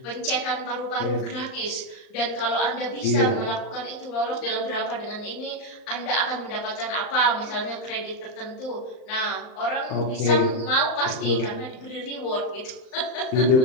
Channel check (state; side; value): late; right; 39 ms